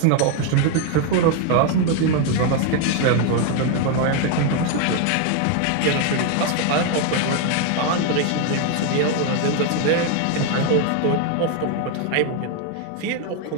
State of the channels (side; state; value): both; different; correlation 0.01